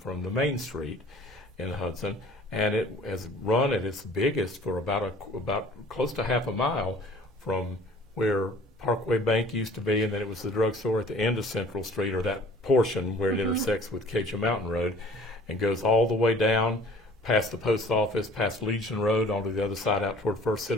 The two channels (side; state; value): both; normal; correlation 0.50